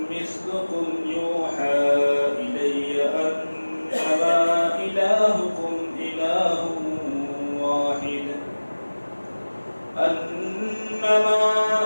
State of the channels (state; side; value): inverted; both; correlation -1.00